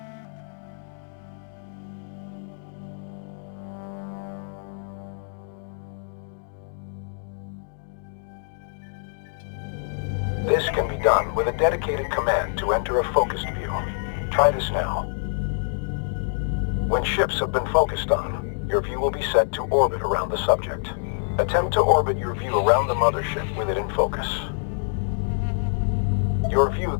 This can be done with a dedicated command to enter a focused view. Try this now. When ships have been focused on, your view will be set to orbit around the subject. Attempt to orbit your view around the mothership with it in focus. Your view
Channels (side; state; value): right; silent; digital silence